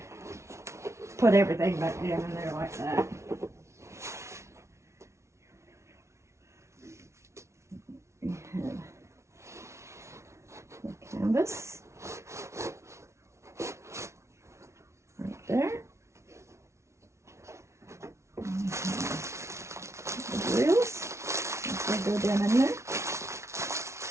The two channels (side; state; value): left; late; 0.13 ms